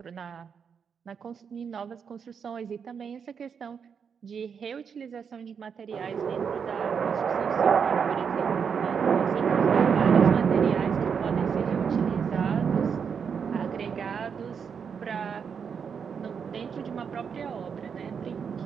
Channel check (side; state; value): left; quieter; 6.7 dB